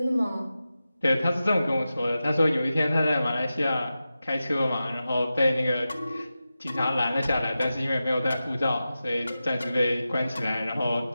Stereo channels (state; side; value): inverted; both; correlation -0.93